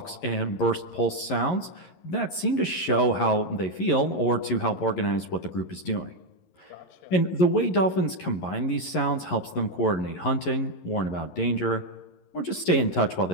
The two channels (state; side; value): late; right; 11 ms